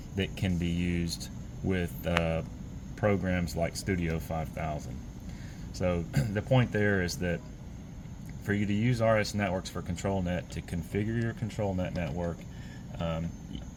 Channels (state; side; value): identical; both; correlation 1.00